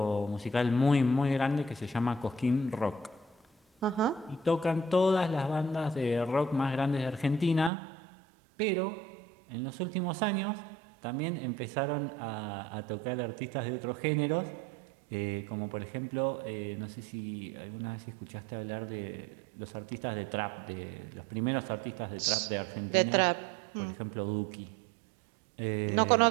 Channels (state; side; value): drops out; left; at 7.7 s